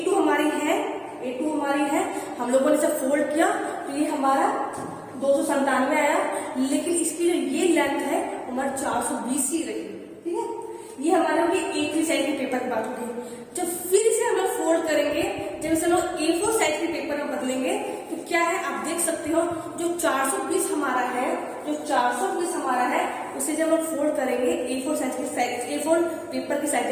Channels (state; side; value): identical; both; correlation 1.00